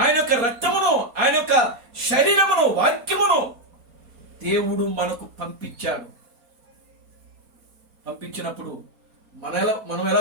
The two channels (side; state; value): left; late; 4.2 ms